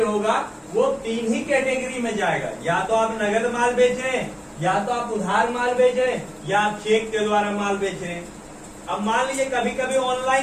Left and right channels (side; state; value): both; identical; correlation 1.00